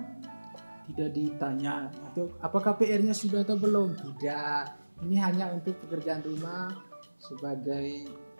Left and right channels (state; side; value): inverted; both; correlation -1.00